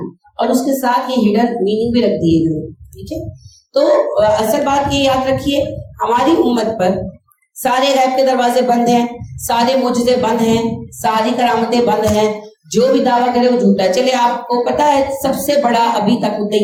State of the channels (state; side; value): identical; both; correlation 1.00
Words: और उसके साथ ये हिडन मीनिंग भी रख दिए गए, ठीक है। तो असल बात ये याद रखिए, हमारी उम्मत पर सारे गैब के दरवाजे बंद हैं, सारे मुजज़े बंद हैं, सारी करामतें बंद हैं। जो भी दावा करे वो झूठा है। चले आपको पता है सबसे बड़ा अभी तक